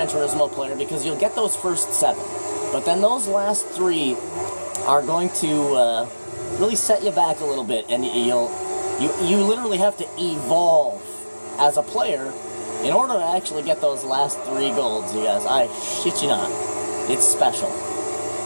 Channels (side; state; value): both; inverted; correlation -1.00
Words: Turismo player because you'll get those first 7. But then those last 3 are going to really set you back a little bit, and you literally have to evolve as a player in order to actually get those last 3 golds, you guys. I shit you not. It's special.